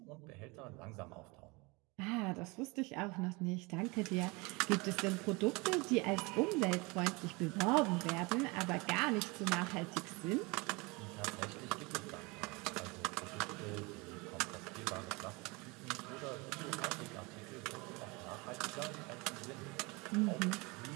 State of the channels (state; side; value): quieter; left; 26.5 dB